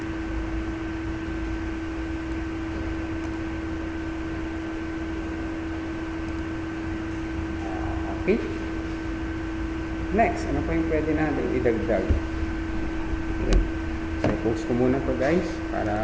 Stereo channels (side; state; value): both; identical; correlation 1.00